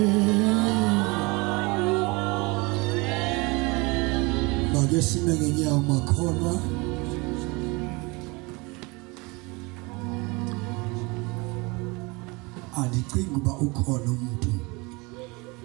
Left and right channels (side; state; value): left; quieter; 26.3 dB